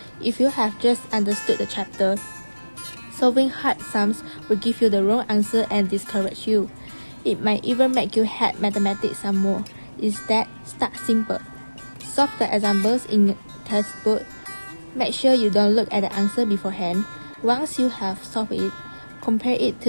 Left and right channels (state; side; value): inverted; both; correlation -1.00